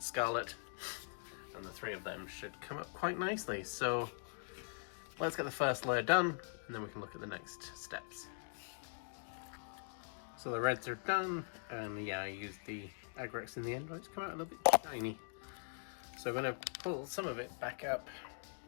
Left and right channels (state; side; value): silent; right; digital silence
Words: Scarlet, and the 3 of them should come up quite nicely. So let's get the first layer done, and then we can look at the next steps. So the reds are done, and yeah, I used the Agrax in the end, but it's come out a little bit shiny. So I'm going to pull some of it back up